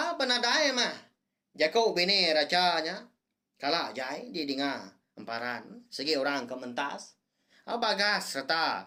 penadai mah. Jago bini racanya kalah jai di dengar emparan segi orang kementas. Bagas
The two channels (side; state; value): both; identical; correlation 1.00